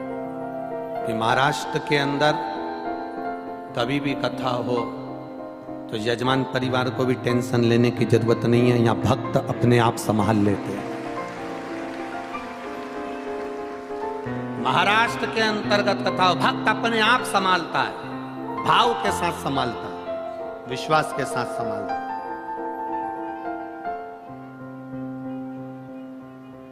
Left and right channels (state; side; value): identical; both; correlation 1.00